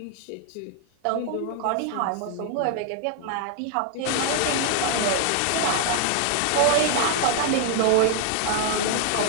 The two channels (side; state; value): both; different; correlation 0.00